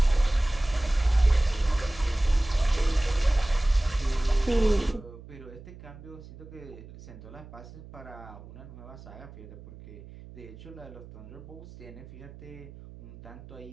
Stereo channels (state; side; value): noise; right; hum, 17 dB below the sound